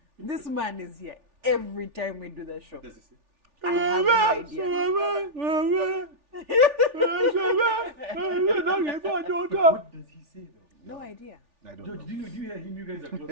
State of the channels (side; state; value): left; late; 3.4 ms